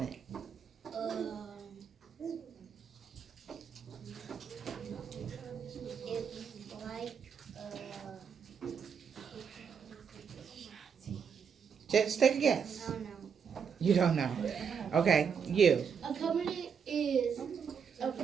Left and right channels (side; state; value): left; quieter; 6.8 dB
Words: It's like Just take a I guess. don't know. You don't know. Okay, you. A covenant is a